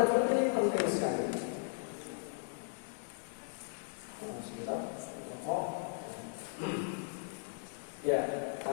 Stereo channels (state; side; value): silent; right; digital silence